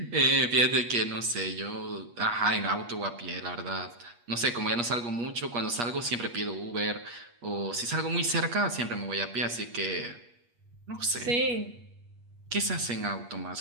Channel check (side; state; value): left; late; 8.4 ms